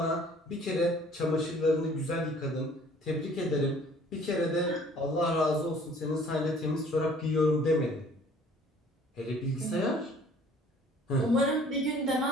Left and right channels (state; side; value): normal; both; correlation 0.54